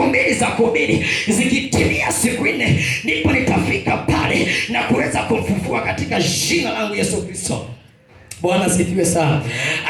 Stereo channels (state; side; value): identical; both; correlation 1.00